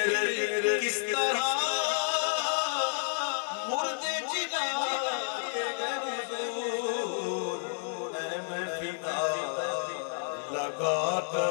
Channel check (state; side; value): silent; right; digital silence